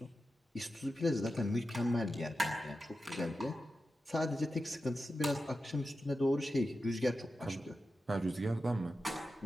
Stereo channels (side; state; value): both; normal; correlation 0.91